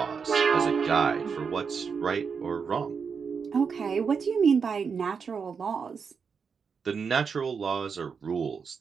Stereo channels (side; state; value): left; quieter; 5.9 dB